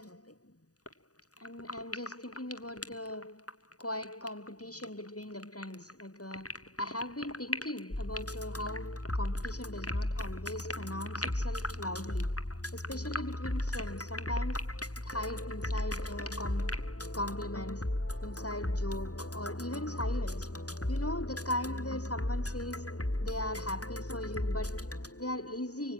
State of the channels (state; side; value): late; right; 0.67 ms